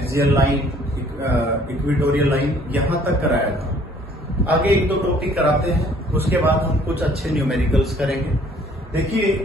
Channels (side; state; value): both; normal; correlation 0.58